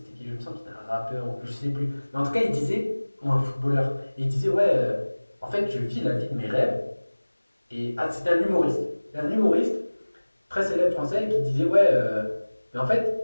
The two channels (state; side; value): inverted; both; correlation -1.00